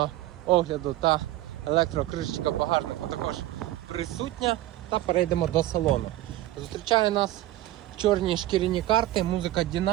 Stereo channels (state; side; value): quieter; left; 15.3 dB